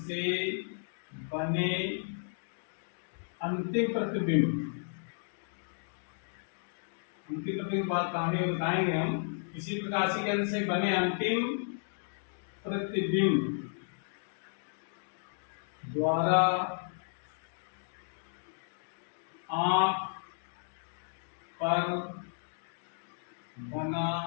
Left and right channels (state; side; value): silent; right; digital silence